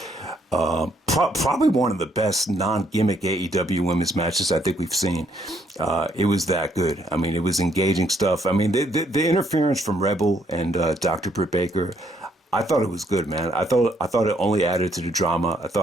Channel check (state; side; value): normal; both; correlation 0.70